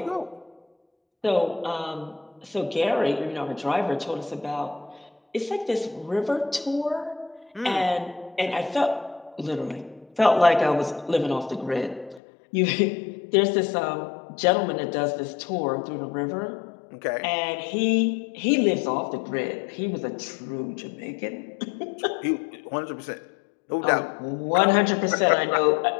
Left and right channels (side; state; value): right; drops out; at 12.2 s